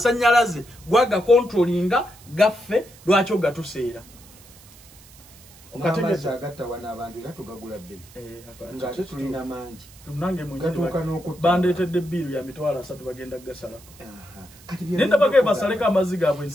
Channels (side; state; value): right; noise; hiss, 23 dB below the sound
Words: gwaga controllinga gaffe lwaki ogatuseera. Amazzi agatta wana abantu era tugagula bbiri. Nga ate tulina mangi. Nange gatuuka n'okutta. Bandeetedde bbiiru ya mitwalo 3 bagenda gasalako. Nenda bagee basaleko amazzi gaabwe